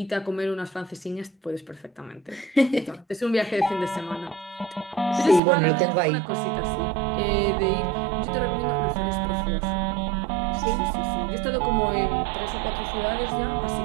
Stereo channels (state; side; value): drops out; left; at 5.4 s